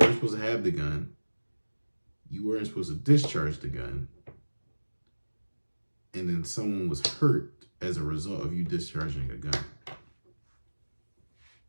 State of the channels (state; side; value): inverted; both; correlation -1.00